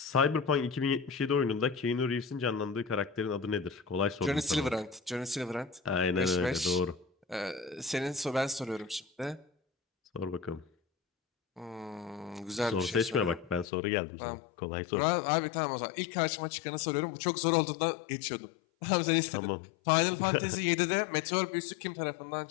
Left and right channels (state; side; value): drops out; right; at 13.7 s